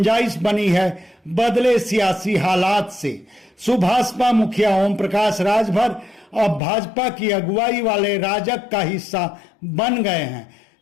बनी है बदले सियासी हालात से। सुभाषपा मुखिया ओम प्रकाश राजभर अब भाजपा की अगुवाई वाले राजग का हिस्सा बन गए हैं।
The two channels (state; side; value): drops out; right; at 6.6 s